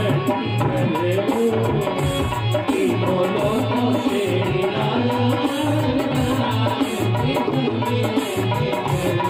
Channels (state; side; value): identical; both; correlation 1.00